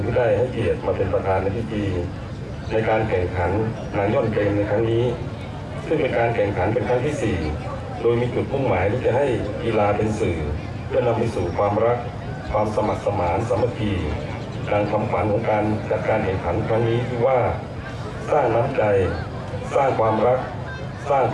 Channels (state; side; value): identical; both; correlation 1.00